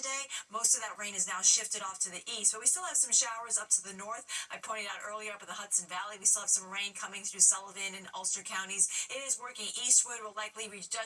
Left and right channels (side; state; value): both; identical; correlation 1.00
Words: Most of that rain is now shifted off to the east, but we still have some showers up to the north. I pointed out earlier up in the Hudson Valley, we still have some rain coming through Sullivan and Ulster counties. It is working eastward, will likely reach